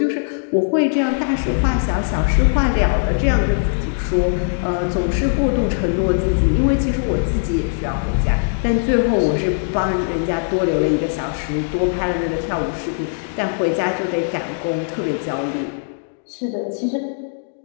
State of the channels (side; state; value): right; silent; digital silence